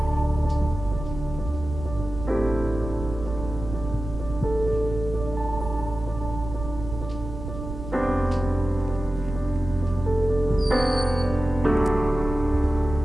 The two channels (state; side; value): noise; right; rumble, 9 dB below the sound